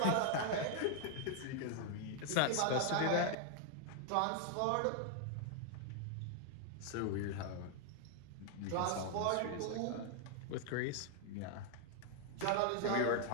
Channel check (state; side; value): different; both; correlation 0.00